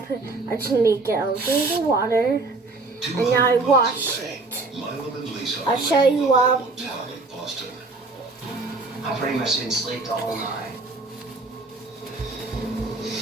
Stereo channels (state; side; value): quieter; left; 3.5 dB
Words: I just need to get out of the water. And now I wash it. I'll show you what. I pretty much didn't sleep the whole night.